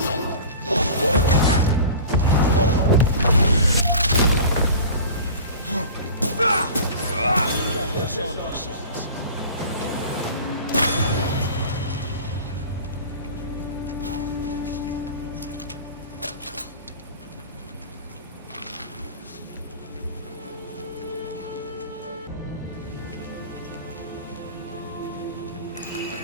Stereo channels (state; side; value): inverted; both; correlation -0.38